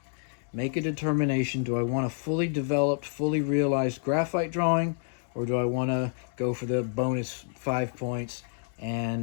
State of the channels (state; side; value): silent; right; digital silence